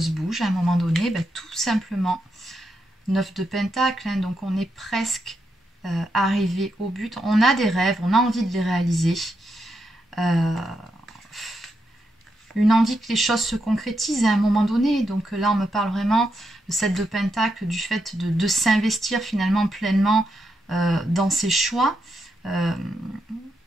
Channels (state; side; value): normal; both; correlation 0.83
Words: bougent à un moment donné? Ben, tout simplement 9 de pentacle, hein, donc on est presque arrivé au but. On a des rêves, on a envie de les réaliser. Une envie que les choses se concrétisent à un moment donné. Donc là, on me parle vraiment de 7 de pentacle, du fait de s'investir finalement pleinement dans ses choix,